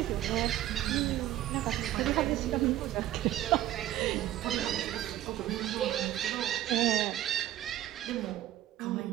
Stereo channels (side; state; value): left; quieter; 13.4 dB